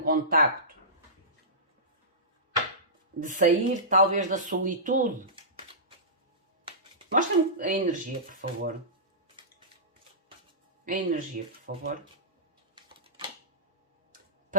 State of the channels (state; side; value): normal; both; correlation -0.20